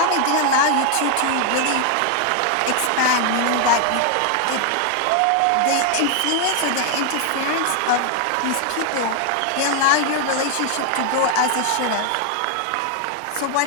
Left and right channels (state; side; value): different; both; correlation 0.00